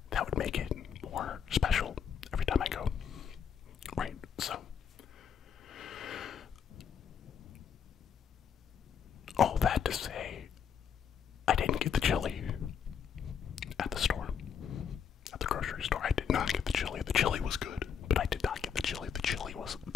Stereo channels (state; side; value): quieter; right; 7.6 dB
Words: that would make it more special every time I go. Right, so. All that to say, I didn't get the chili at the store. At the grocery store, I did not get the chili. The chili was good, but I did not get the chili. The chili was